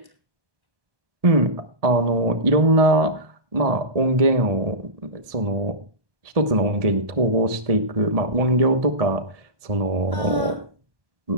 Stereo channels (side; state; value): left; late; 1.7 ms